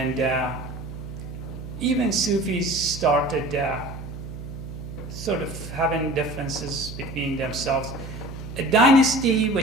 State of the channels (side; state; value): right; noise; hum, 10 dB below the sound